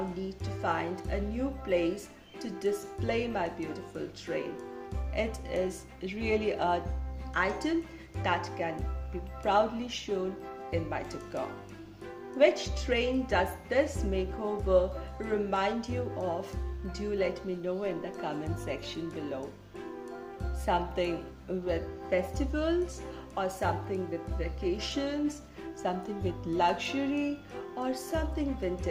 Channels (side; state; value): both; identical; correlation 1.00